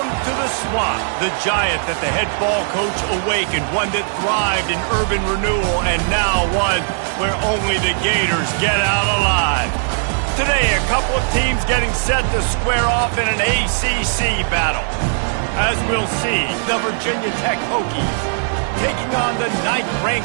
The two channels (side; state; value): left; silent; 67 dB below the other